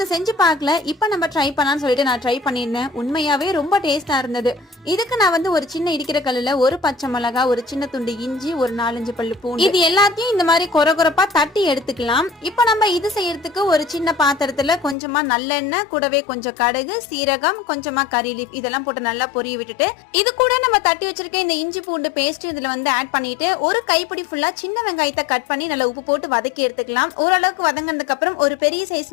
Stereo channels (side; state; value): right; drops out; at 15.0 s